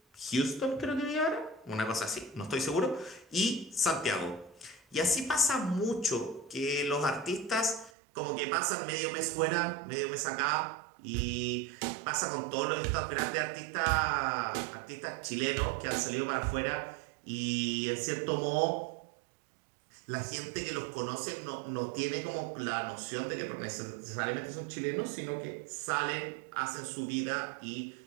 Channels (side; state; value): left; drops out; at 7.9 s